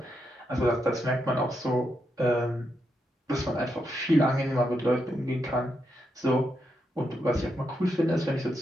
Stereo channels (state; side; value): normal; both; correlation 0.82